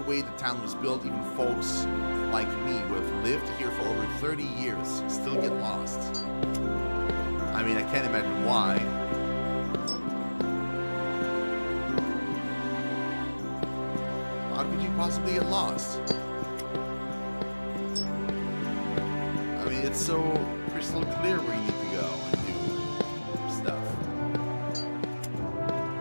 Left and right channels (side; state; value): both; inverted; correlation -1.00